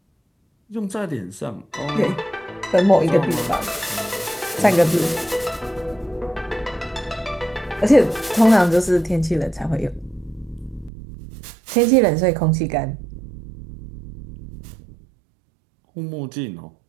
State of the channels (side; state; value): left; drops out; at 10.9 s